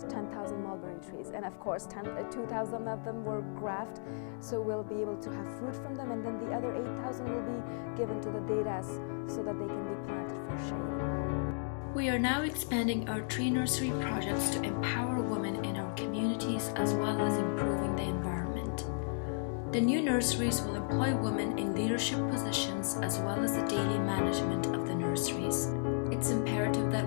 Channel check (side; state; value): right; silent; digital silence